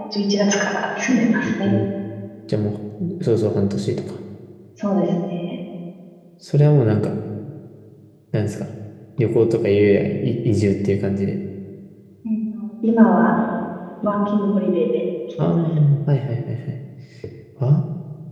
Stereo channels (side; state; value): both; identical; correlation 1.00